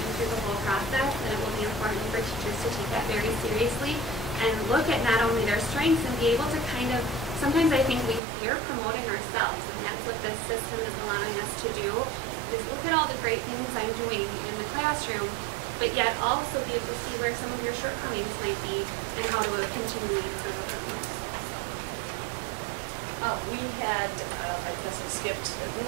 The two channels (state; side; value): drops out; left; at 8.2 s